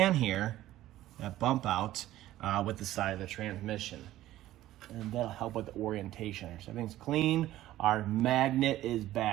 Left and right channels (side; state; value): left; quieter; 14.6 dB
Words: here, that bump out with the side of the transmission. And that'll help with the orientation. So everything's clean. Our magnet is